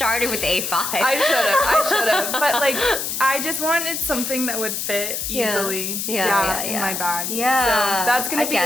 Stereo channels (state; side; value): noise; left; hiss, 3 dB below the sound